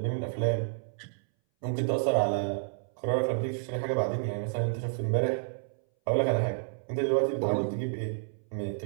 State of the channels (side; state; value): left; silent; 58 dB below the other